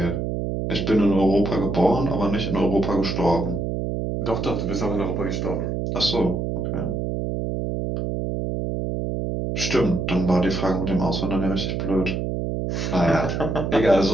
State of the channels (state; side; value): noise; right; hum, 2 dB below the sound